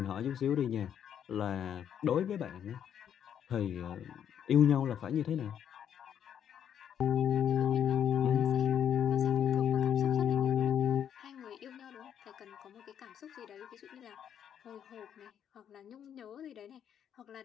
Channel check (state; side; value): quieter; right; 9.0 dB